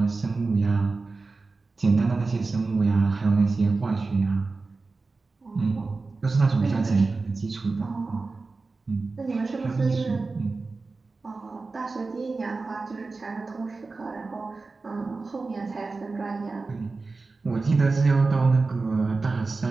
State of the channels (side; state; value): left; quieter; 3.9 dB